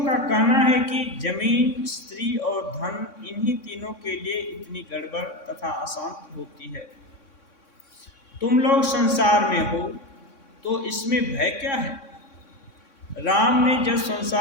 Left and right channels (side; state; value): right; late; 3.6 ms